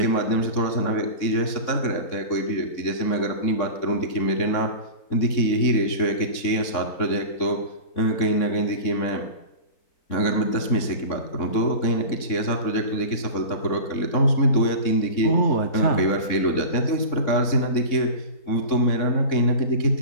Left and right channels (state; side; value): late; right; 3.6 ms